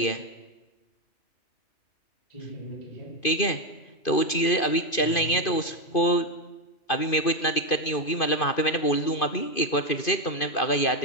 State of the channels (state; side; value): late; right; 2.5 ms